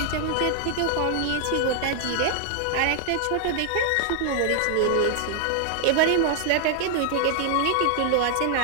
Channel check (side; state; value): both; different; correlation 0.00